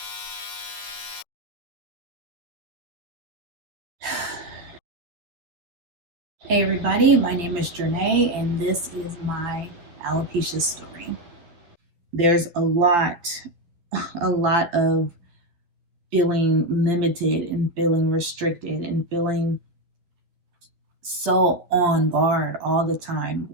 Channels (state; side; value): late; left; 11 ms